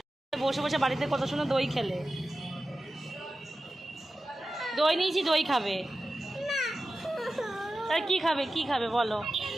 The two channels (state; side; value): normal; both; correlation 0.94